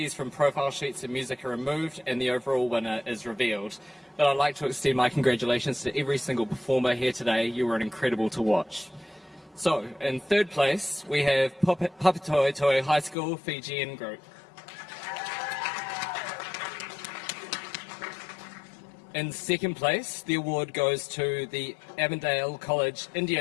from profile sheets and music are removed, and the overall winner is revealed. But I'd like to extend my congratulations to every single performer here today. You were incredible to watch. So, in third place, we have Papatoetoe High School Fijian Group. In second place, the award goes to the Avondale College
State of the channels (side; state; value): right; drops out; at 13.2 s